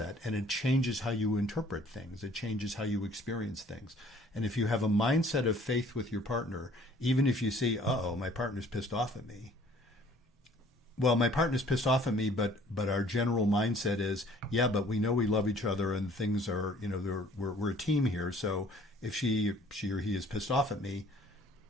and it changes how you interpret things. It changes how you experience things. And if you have a mindset of faith with your partner, even if you see, my partner's pissed off at me, well, my partner's pissed off at me, but our general mindset is, but we know we love each other and things are, we're a team here. So if she or he is pissed off at me,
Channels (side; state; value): both; normal; correlation 0.55